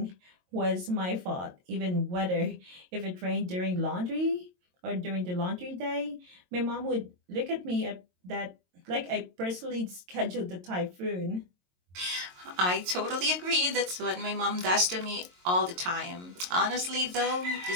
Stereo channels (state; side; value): late; left; 22 ms